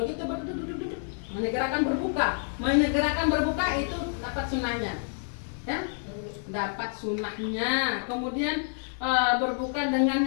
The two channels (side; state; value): right; silent; digital silence